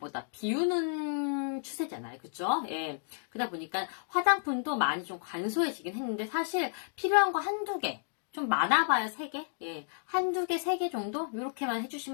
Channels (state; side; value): silent; right; digital silence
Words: 비우는 추세잖아요. 그쵸? 예. 그러다 보니까 화장품도 많이 좀 간소해지긴 했는데 사실 필요한 거 한두 개, 좀 많아봐야 3개? 예. 한두 개, 3개 정도? 이렇게만